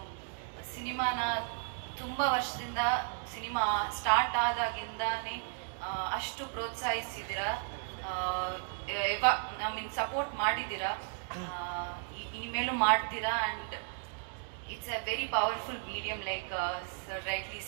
ಸಿನಿಮಾನ ತುಂಬ ವರ್ಷದಿಂದ, ಸಿನಿಮಾ ಸ್ಟಾರ್ಟ್ ಆದಾಗಿಂದಾನೇ ಅಷ್ಟು ಪ್ರೋತ್ಸಾಹಿಸಿದ್ದೀರಾ, ಸಪೋರ್ಟ್ ಮಾಡಿದ್ದೀರಾ, ಇನ್ಮೇಲೂ ಮಾಡ್ತೀರಾ. And it's a very powerful medium, like sir rightly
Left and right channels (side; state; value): left; silent; 55 dB below the other